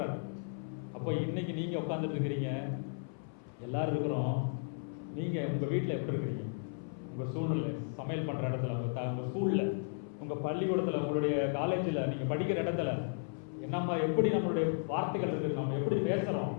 அப்போ இன்னைக்கு நீங்க உட்காந்துட்டு இருக்கிறீங்க, எல்லாரும் இருக்கிறோம். நீங்க உங்க வீட்டில் எப்படி இருக்கிறீங்க? உங்க சூழ்நிலை, சமையல் பண்ற இடத்துல, உங்க ஸ்கூல்ல, உங்க பள்ளிக்கூடத்துல, உங்களுடைய காலேஜில், நீங்க படிக்கிற இடத்துல என்ன எப்படி நம்மளுடைய வார்த்தைகள் இருக்குது, நம்ம எப்படி பேசுறோம்,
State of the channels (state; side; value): silent; right; 55 dB below the other